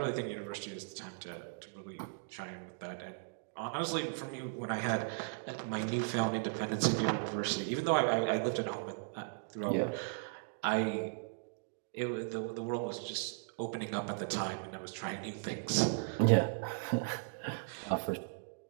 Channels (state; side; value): silent; left; digital silence